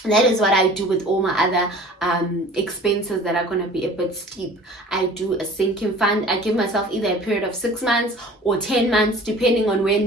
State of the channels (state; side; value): normal; both; correlation 0.45